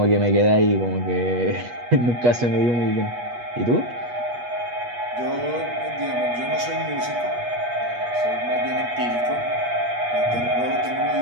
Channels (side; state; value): left; late; 8.3 ms